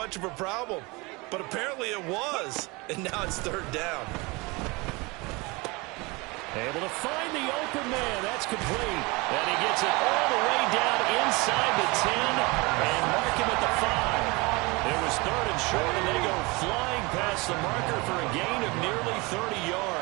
of a problem. But apparently it was, and now it's 3rd down. Able to find the open man. That's complete. And he gets it all the way down inside the 10 and mark him at the 5. It was 3rd and short, and they go flying past the marker for a gain of nearly 30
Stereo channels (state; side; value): quieter; left; 25.6 dB